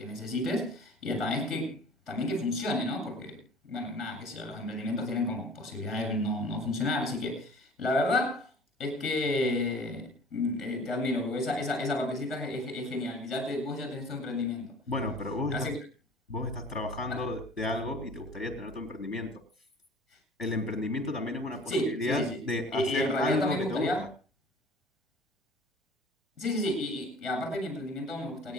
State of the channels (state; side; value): normal; both; correlation 0.46